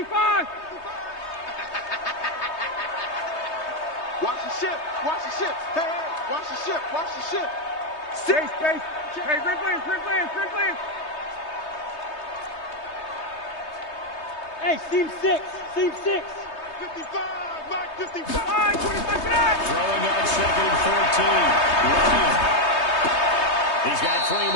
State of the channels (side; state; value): right; late; 3.2 ms